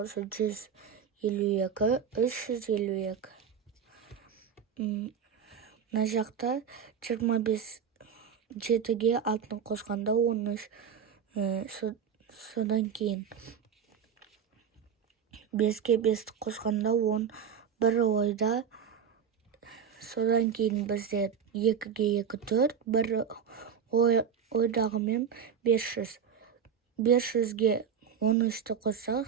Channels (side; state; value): left; quieter; 7.4 dB